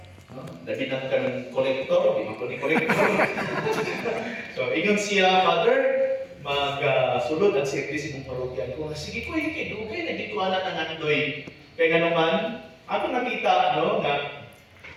Dahil na ka ng kolektor, di man ko ni kolektor. So, ingon siya, Father, mag-sulod ang service mong parokya. Ko, sige ko, okay, naging ko anak ang andoy. Kaya nga naman, ako nakita, no, na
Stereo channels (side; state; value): both; identical; correlation 1.00